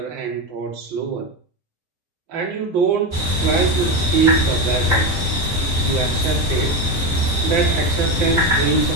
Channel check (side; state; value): left; late; 5.7 ms